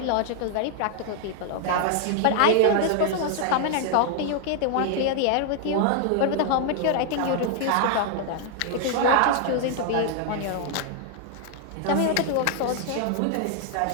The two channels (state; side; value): different; both; correlation -0.01